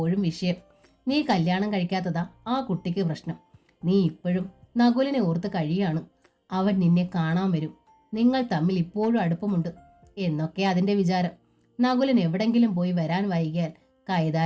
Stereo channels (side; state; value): both; identical; correlation 1.00